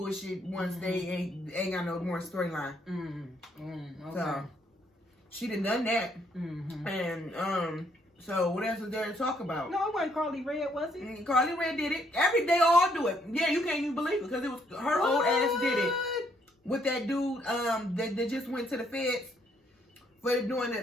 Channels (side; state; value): both; normal; correlation 0.70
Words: once they ain't got no more storyline. Okay. So she done that. And so what else is there to talk about? No, it wasn't Carly Red, was it? Carly Red did it. They all do it. Yeah, you can't even believe it because it was her old ass did it with that dude that just went to the feds for doing